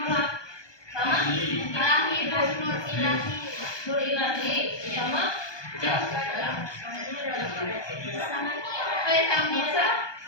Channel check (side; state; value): right; late; 1.2 ms